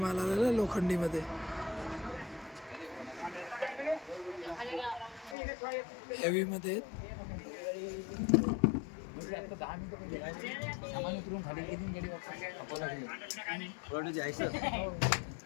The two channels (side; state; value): right; drops out; at 5.4 s